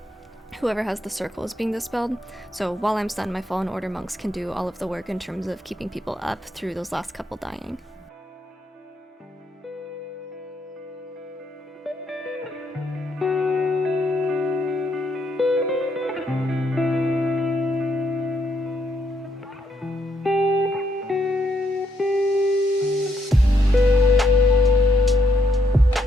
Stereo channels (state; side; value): normal; both; correlation 0.76